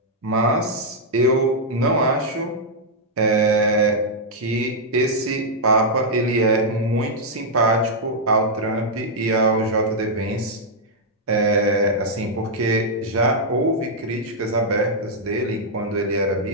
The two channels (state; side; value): normal; both; correlation -0.05